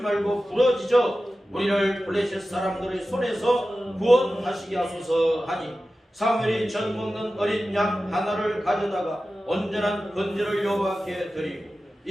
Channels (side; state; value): both; normal; correlation 0.94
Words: 부러지져 우리를 블레셋 사람들의 손에서 구원하시게 하소서 하니 사무엘이 젖 먹는 어린 양 하나를 가져다가 온전한 번제를 여호와께 드리고